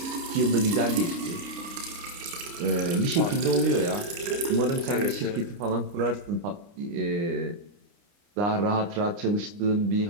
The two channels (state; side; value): late; left; 29 ms